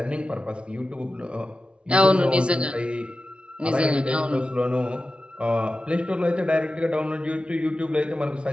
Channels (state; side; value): late; left; 0.058 ms